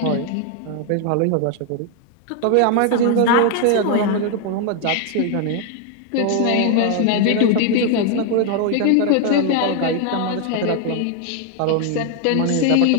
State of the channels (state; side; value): different; both; correlation 0.00